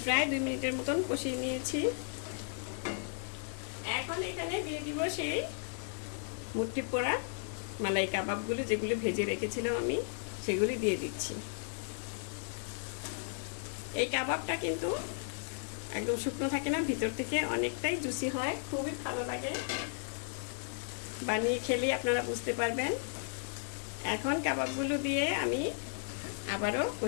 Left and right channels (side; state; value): right; silent; digital silence